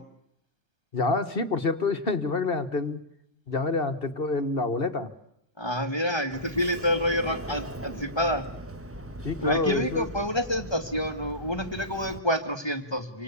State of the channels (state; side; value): normal; both; correlation -0.13